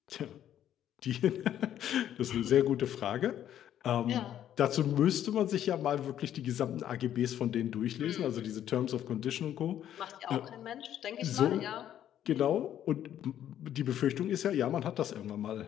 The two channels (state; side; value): quieter; right; 10.9 dB